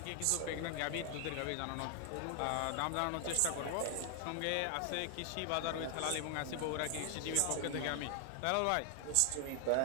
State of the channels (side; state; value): both; different; correlation 0.00